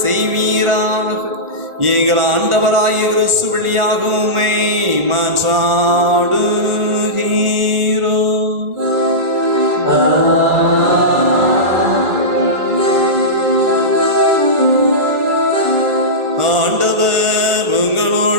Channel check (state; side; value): late; left; 1.4 ms